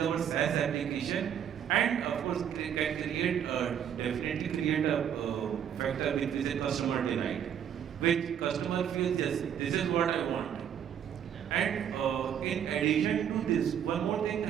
our SaaS application, and of course can definitely create a factor which is a customer delight, which customer feels, yes, this is what I want. And in addition to this, one more thing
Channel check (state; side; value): quieter; left; 9.0 dB